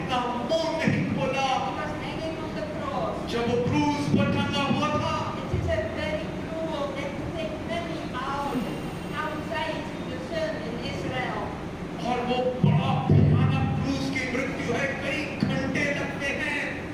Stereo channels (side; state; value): both; identical; correlation 1.00